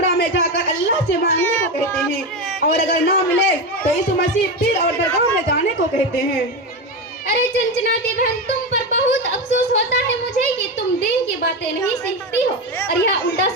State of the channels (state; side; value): normal; both; correlation 0.16